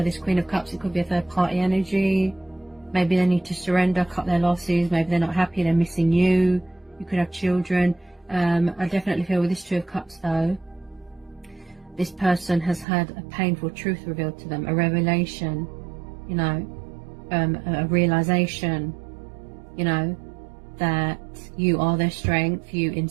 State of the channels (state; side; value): drops out; left; at 12.9 s